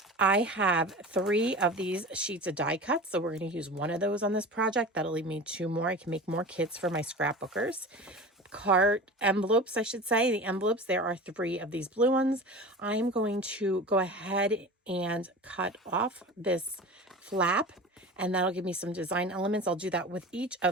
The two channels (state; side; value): normal; both; correlation 0.34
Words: I have 3 of these sheets of die cuts, so we're going to use 1 of those on this project. That'll leave me 2 more. I can make more kits for my scrapbookers. Card envelopes, I should say. The envelopes, there are 3 of these blue ones. I'm going to go ahead and cut off this flap, and that'll give me some design elements. I'll do that with each